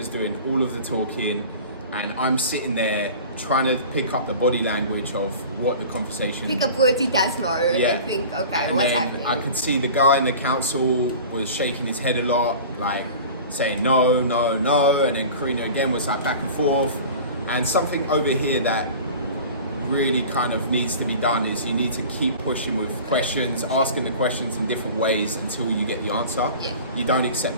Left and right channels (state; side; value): inverted; both; correlation -0.39